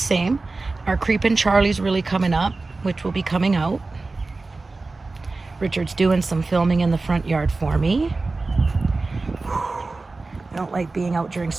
Our Creepin' Charlie's really coming up, which will be coming out. Richard's doing some filming in the front yard for me. I don't like being out during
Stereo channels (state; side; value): quieter; left; 3.5 dB